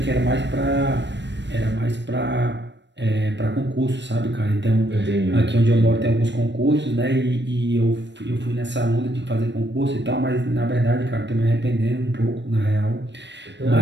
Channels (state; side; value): late; left; 0.52 ms